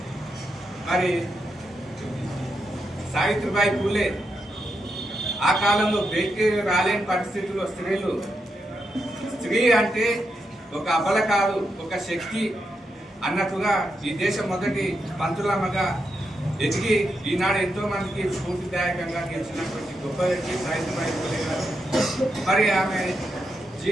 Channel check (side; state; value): both; normal; correlation 0.84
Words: మరి సావిత్రిబాయి పూలే ఆ కాలంలో బయటికి రాలేని పరిస్థితుల్లో స్త్రీ అంటే ఒక అబల కాదు, ఒక శక్తి అన్నట్టుగా ఈ దేశం మొదటి పంతులమ్మగా ఎదిగి ఈనాడు ఎంతో మందికి స్ఫూర్తిదాయకంగా గెలిచినటువంటి గొప్ప వ్యక్తి సావిత్రిబాయి పూలే గారు. మరి ఆమె